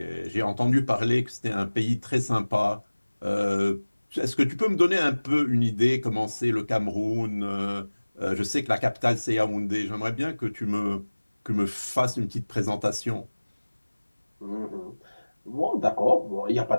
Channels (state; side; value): inverted; both; correlation -1.00